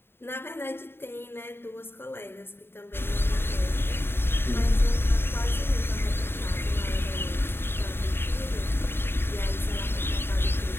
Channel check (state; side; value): late; right; 0.11 ms